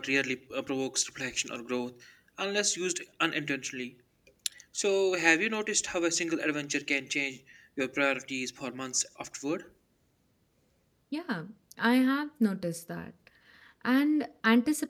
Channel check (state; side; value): identical; both; correlation 1.00